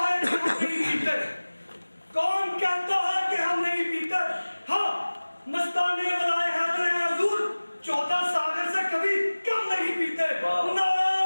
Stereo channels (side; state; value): both; inverted; correlation -1.00